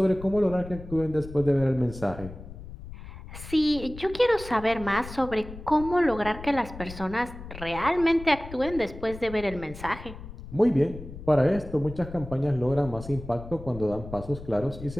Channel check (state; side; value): noise; left; rumble, 13 dB below the sound